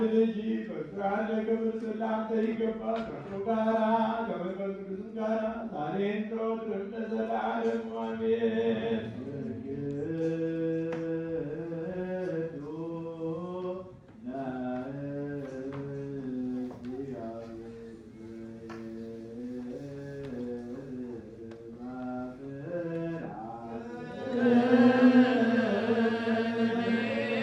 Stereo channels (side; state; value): both; identical; correlation 1.00